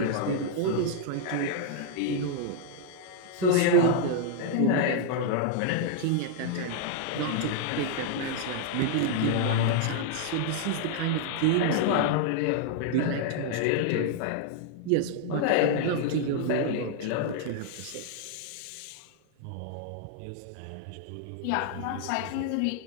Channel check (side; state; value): both; different; correlation 0.00